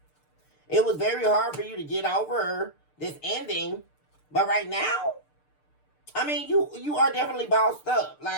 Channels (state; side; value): late; right; 6.7 ms